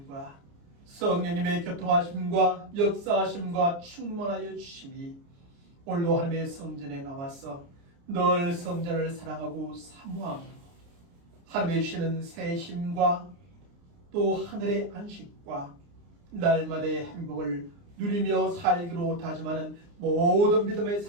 성령님의 교통하심과 역사하심과 충만하여 주심이 오늘도 하나님의 성전에 나와서 늘 성전을 사랑하고 사모하고 하나님의 주시는 새 힘과 또 하늘의 안식과 날마다의 행복을 누리며 살기로 다짐하는 모든 믿음의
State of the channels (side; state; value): left; late; 29 ms